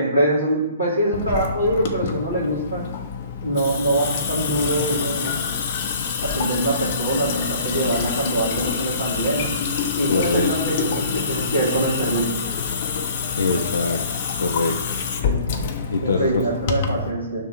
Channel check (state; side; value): inverted; both; correlation -0.52